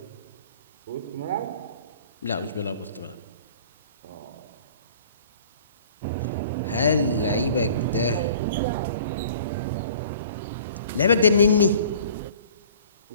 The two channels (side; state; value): both; inverted; correlation -0.49